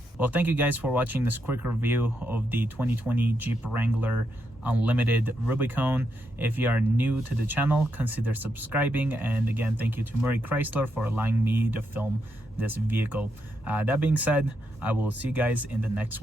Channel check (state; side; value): normal; both; correlation 0.81